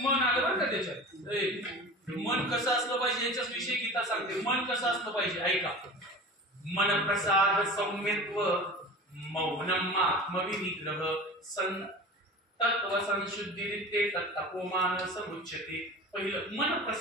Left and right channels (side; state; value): both; normal; correlation 0.36